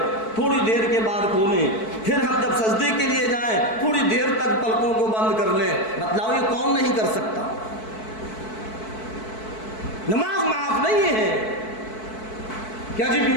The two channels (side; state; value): right; late; 4.6 ms